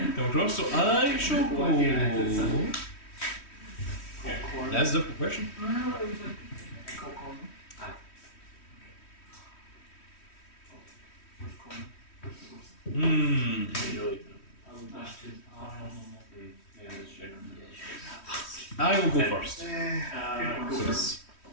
across, so I shall go. That's a difficult question. I will go first.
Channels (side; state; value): right; late; 3.1 ms